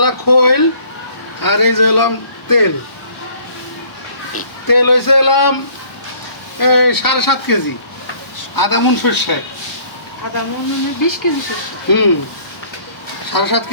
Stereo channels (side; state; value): right; late; 1.0 ms